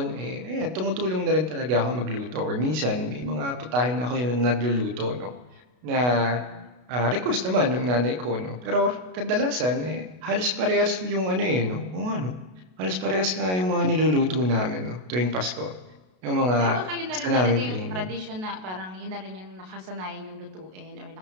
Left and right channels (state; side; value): late; left; 32 ms